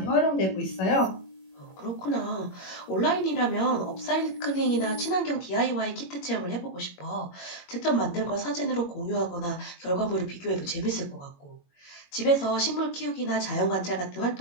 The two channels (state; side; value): late; right; 21 ms